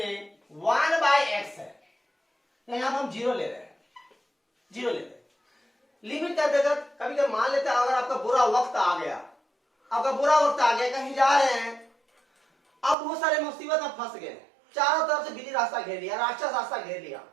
1/x है, यहां हम जीरो ले रहे हैं, जीरो ले रहे हैं। लिमिट कर देकर कभी कभी मान लेते हैं अगर आपका बुरा वक्त आ गया, आपका बुरा वक्त आ गया, कहीं जा रहे हैं, अब बहुत सारे मुसीबत में फंस गए, चारों तरफ से बिल्ली रास्ता घेर लिया, राक्षस रास्ता घेर लिया,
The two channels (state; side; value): drops out; left; at 13.0 s